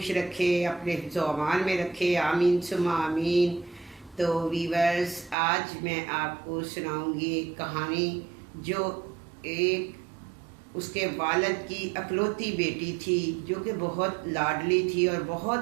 रखे, अपने हिफ्ज़ व अमान में रखे, आमीन सुम्मा आमीन। तो वीवर्स, आज मैं आपको सुनाऊंगी एक कहानी जो एक उसके वालिद की अकलौती बेटी थी, जो कि बहुत लाडली थी और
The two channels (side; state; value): left; drops out; at 5.4 s